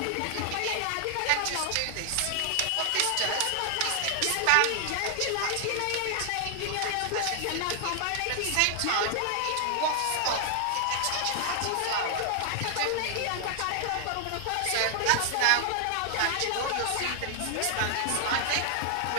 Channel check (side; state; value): both; different; correlation 0.00